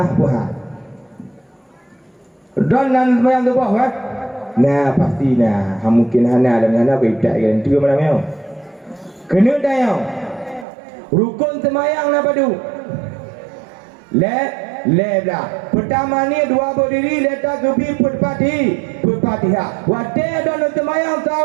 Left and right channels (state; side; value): drops out; left; at 10.7 s